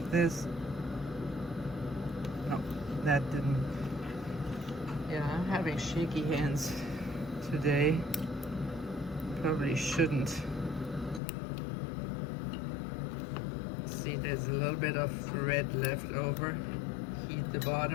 this. No, that didn't. Yeah, I'm having shaky hands today. Probably shouldn't. See, there's a little bit of red left over. Heat the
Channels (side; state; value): right; drops out; at 11.2 s